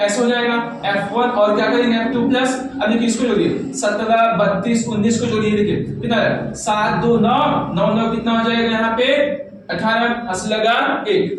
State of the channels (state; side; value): identical; both; correlation 1.00